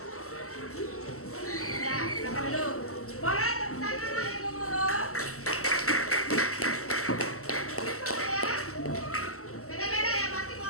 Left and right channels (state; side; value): late; right; 0.63 ms